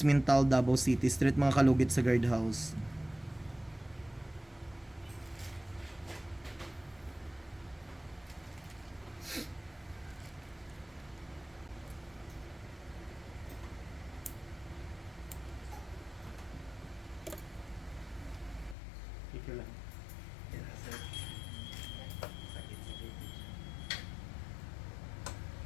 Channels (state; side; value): drops out; right; at 18.8 s